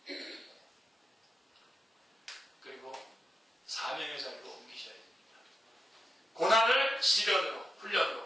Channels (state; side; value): normal; both; correlation 0.89